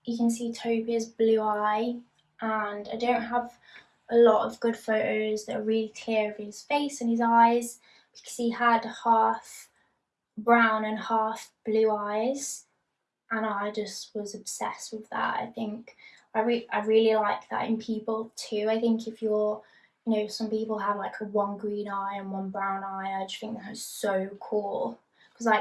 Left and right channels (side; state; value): both; identical; correlation 1.00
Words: you can see Toby's blue eye, and I don't have a lot of good photos that are really clear of his face and his eyes because he had half brown and half blue eyes, and I just was obsessed with that. I think I really like that in people too. I think if you're, you know, some people have like a one green eye and one brown eye. I just think that is so cool because